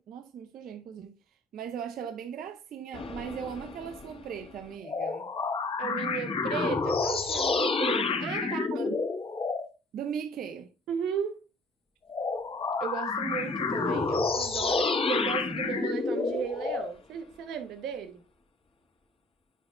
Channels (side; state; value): both; normal; correlation 0.51